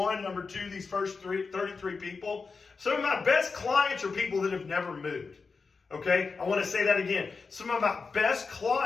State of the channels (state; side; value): quieter; right; 4.7 dB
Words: number 2, these first 33 people, some of my best clients are people that have never moved. Okay? I want to say that again. Some of my best